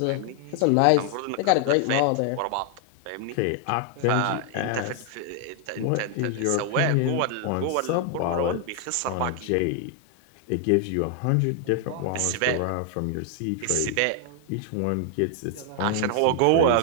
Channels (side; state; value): both; different; correlation 0.00